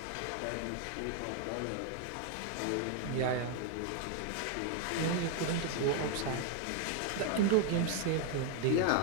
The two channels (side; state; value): both; different; correlation 0.00